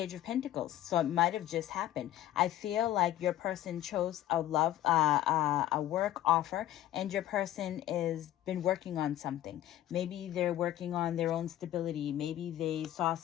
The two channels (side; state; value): right; quieter; 13.2 dB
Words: of Pentacles, so it might have just happened. I feel like your person chose a work offer, and your person is been working on something. Maybe they're working on their own stability. Maybe they saw